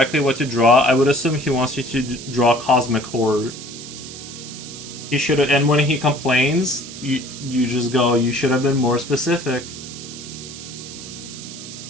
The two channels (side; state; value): right; noise; hiss, 13 dB below the sound